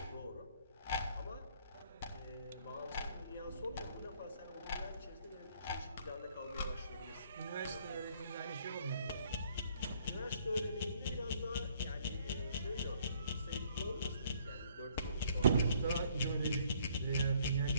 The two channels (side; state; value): both; inverted; correlation -0.63